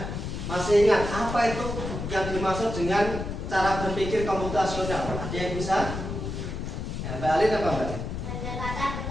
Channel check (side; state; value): left; noise; rumble, 5 dB below the sound